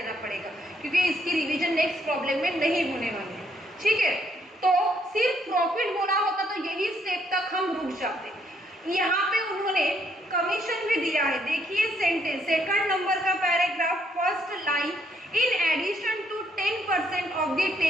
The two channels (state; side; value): normal; both; correlation 0.72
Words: पड़ेगा, क्योंकि इसकी रिवीजन नेक्स्ट प्रॉब्लम में नहीं होने वाली है। ठीक है, तो सिर्फ प्रॉफिट बोला होता तो यही स्टेप तक हम रुक जाते। यहाँ पे उन्होंने कमीशन भी दिया है। देखिए सेंटेंस, सेकंड नंबर का paragraph, first line, in addition to 10% of the